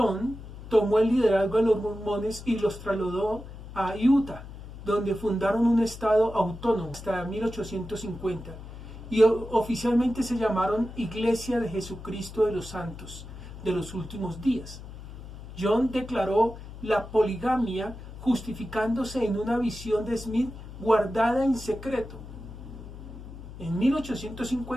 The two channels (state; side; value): noise; left; hum, 13 dB below the sound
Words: tomó el liderazgo de los mormones y los trasladó a Utah, donde fundaron un estado autónomo hasta 1850 y oficialmente se llamaron Iglesia de Jesucristo de los Santos de los Últimos Días. John declaró la poligamia justificándose en una visión de Smith guardada en secreto. En